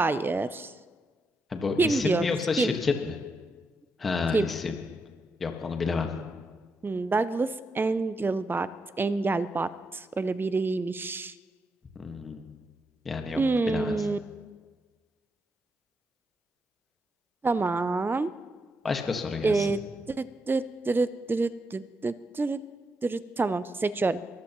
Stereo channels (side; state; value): both; normal; correlation 0.82